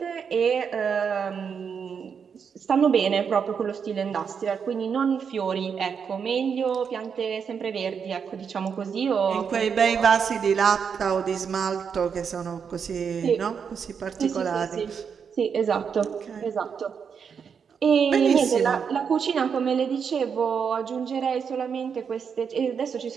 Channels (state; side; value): quieter; left; 6.7 dB